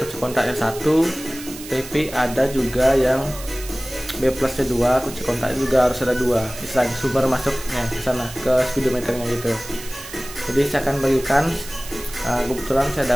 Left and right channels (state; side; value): noise; right; hiss, 14 dB below the sound